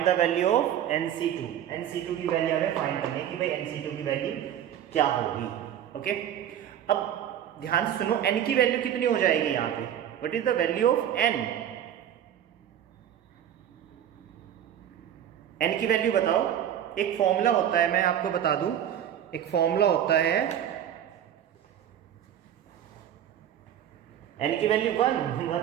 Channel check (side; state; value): left; quieter; 10.3 dB